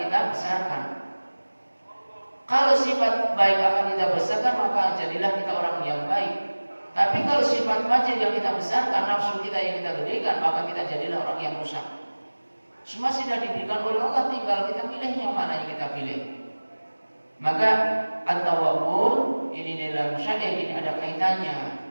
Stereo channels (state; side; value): inverted; both; correlation -1.00